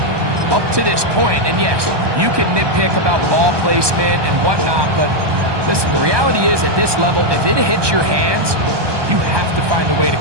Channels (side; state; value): left; late; 1.2 ms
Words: up to this point. And yes, you can nitpick about ball placement and whatnot, but listen, the reality is at this level, if it hits your hands, you have to find a way to